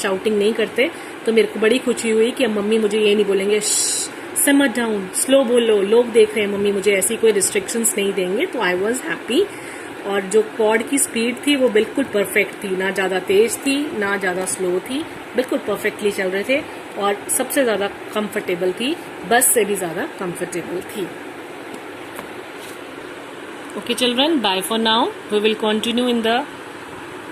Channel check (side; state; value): both; identical; correlation 1.00